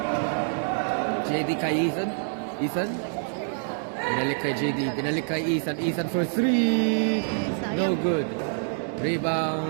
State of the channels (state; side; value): silent; left; digital silence